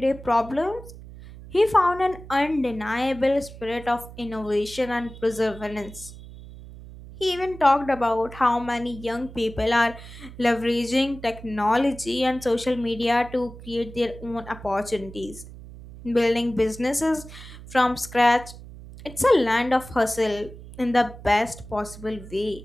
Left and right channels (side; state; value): right; noise; hum, 16 dB below the sound